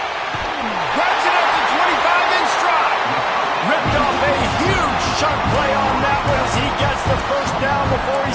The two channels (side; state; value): both; identical; correlation 1.00